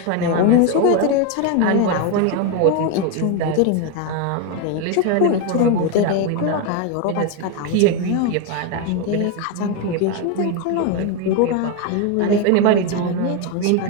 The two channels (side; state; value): both; different; correlation 0.02